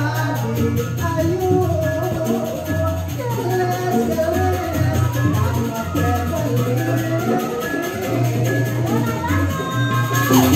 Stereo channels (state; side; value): identical; both; correlation 1.00